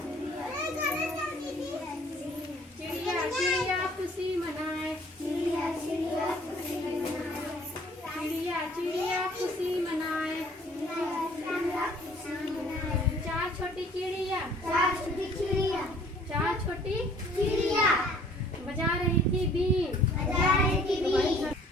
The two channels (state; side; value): normal; both; correlation 0.56